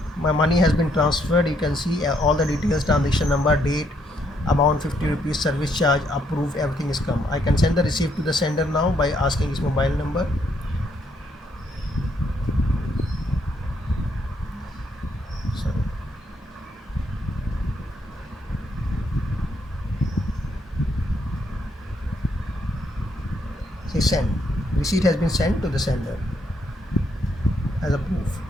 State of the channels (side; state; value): both; normal; correlation 0.73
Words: My money has been transferred. You can see all the details: transaction number, date, amount 50 rupees, service charge, approved, everything is come. I can send the receipt to the sender now by asking his mobile number. Say send. Receipt has been sent to the sender as a proof.